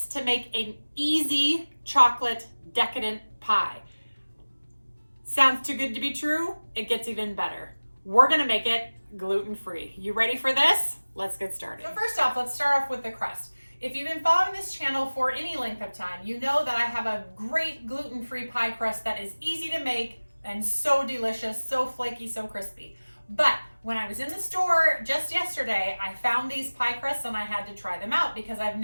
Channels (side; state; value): both; inverted; correlation -1.00